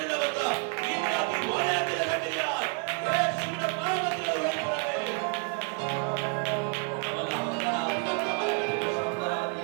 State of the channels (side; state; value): left; quieter; 37.1 dB